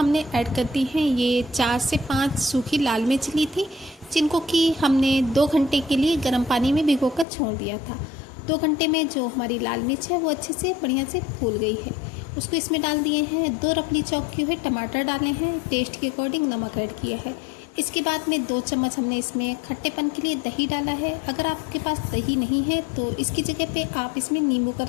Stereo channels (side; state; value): right; drops out; at 7.2 s